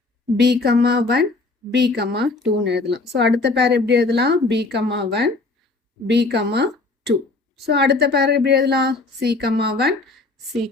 பி கம்மா 1 பி கம்மா 2ன்னு எழுதலாம். ஸோ அடுத்த பேர் எப்படி எழுதலாம்? B comma 1 B comma 2. So அடுத்த பேர் எப்படி எழுதலாம்? சி கம்மா 1 சி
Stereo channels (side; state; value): right; quieter; 3.5 dB